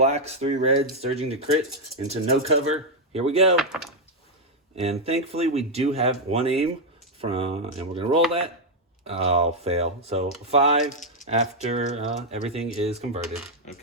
3 reds, surging to crit into no cover. Here we go. And thankfully we do have 1 aim from, and we're gonna roll that. Oh, fail. So 5 after everything is converted.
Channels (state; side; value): normal; both; correlation 0.00